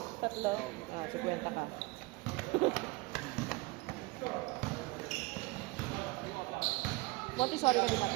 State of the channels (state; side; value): quieter; left; 22.9 dB